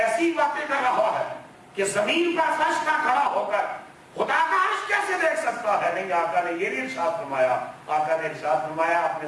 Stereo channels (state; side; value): identical; both; correlation 1.00